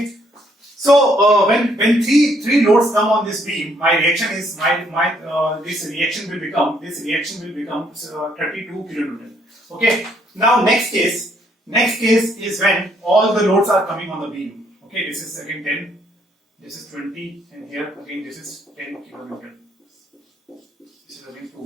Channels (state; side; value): normal; both; correlation 0.69